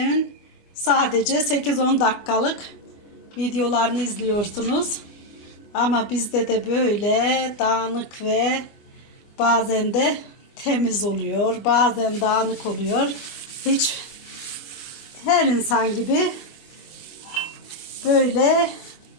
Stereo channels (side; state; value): right; late; 24 ms